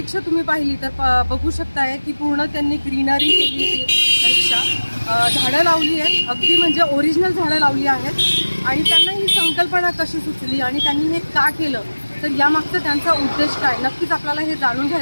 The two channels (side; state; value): both; inverted; correlation -1.00